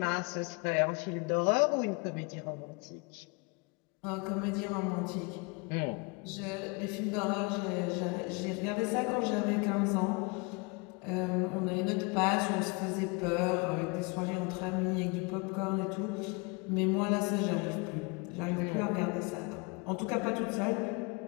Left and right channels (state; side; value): quieter; right; 29.7 dB